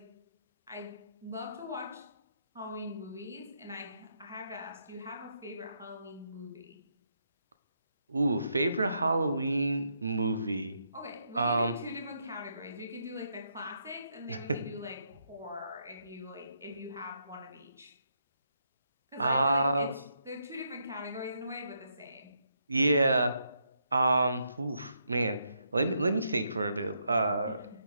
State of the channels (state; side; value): inverted; both; correlation -0.78